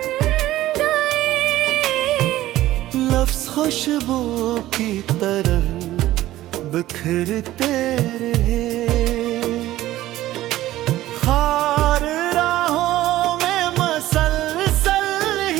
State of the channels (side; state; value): left; quieter; 15.1 dB